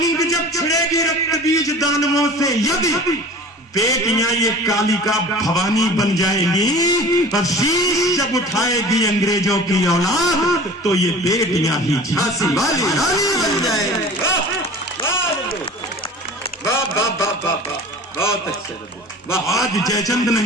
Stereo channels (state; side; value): normal; both; correlation 0.41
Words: जब छिड़ेगी रक्त बीज दानवों से, यदि बेटियां ये कालिका भवानी बन जाएंगी और शीश जब उठाएगी अंग्रेजों की औलाद तो ये बेटियां ही झांसी वाली रानी बन जाएंगी। बहुत अच्छे। आज जयचंद